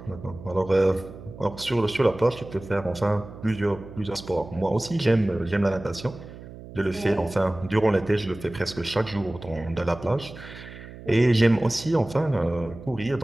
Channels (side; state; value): right; noise; hum, 15 dB below the sound